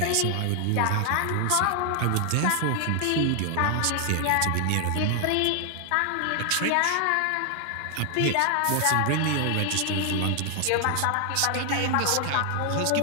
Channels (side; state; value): both; different; correlation 0.00